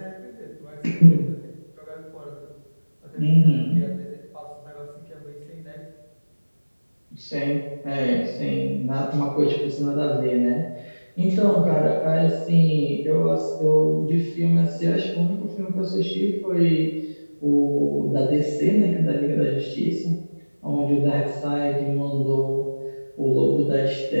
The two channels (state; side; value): inverted; both; correlation -1.00